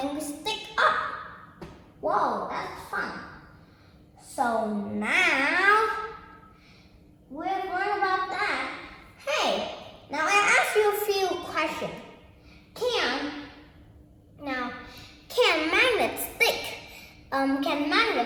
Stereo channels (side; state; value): both; identical; correlation 1.00